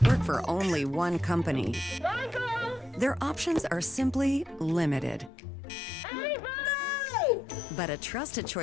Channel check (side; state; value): right; drops out; at 5.3 s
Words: work for only one company, their options are simply limited. Everybody! But a trusted